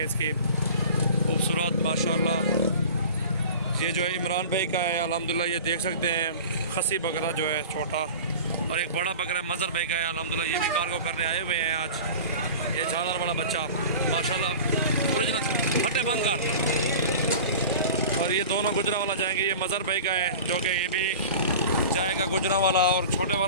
इसकी खूबसूरत माशाल्लाह। ये जो है इमरान भाई का है अल्हम्दुलिल्लाह, ये देख सकते हैं खसी बकरा जो है छोटा, और एक बड़ा बकरा मज़र भाई का है अल्हम्दुलिल्लाह, ये भी कार्गो करने आए हुए हैं आज। ये झालर वाला बच्चा माशाल्लाह ओरिजिनल फटे बंद कर। और ये दोनों गुजरांवाला जाएंगे। ये मज़र भाई का है जो कि ये भी जाएगा गुजरांवाला, और छोटे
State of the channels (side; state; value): both; inverted; correlation -0.37